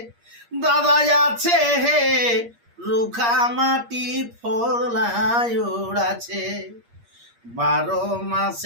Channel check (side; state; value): left; late; 8.5 ms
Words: দাদা আছে হে রুখা মাটি ফলায় ওড়াছে, 12